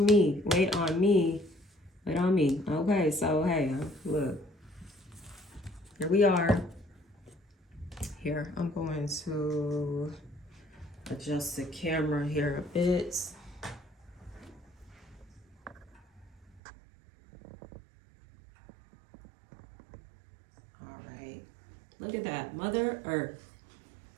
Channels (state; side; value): drops out; left; at 16.6 s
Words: me, wait on me, wait on me. Okay, so hey, look, here we are. Here, I'm going to adjust the camera here a bit. All right, look at that, Mother Earth,